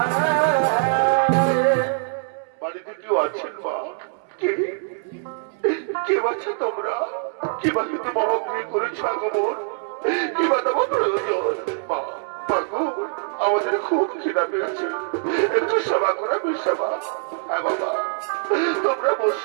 বাড়িতে কেউ আছেন মা? কেউ আছে তোমরা? কিবা কিন্তু বাবা গৃহ করেছ আগমন, কিবা তোমার প্রয়োজন? মা মাগো, আমাদের খুব খিদা পেয়েছে, একটু সেবা করা সেবা। হ্যাঁ বাবা, তোমরা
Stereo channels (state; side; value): silent; left; 63 dB below the other